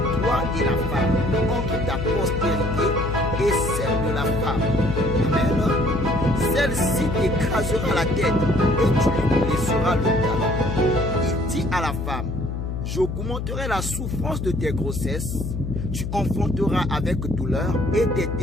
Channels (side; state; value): left; noise; hum, 4 dB below the sound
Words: toi et la femme, entre ta postérité et celle de la femme. Amen. Celle-ci t'écrasera la tête et tu lui blesseras le talon. Il dit à la femme, j'augmenterai la souffrance de tes grossesses, tu enfanteras avec douleur et tes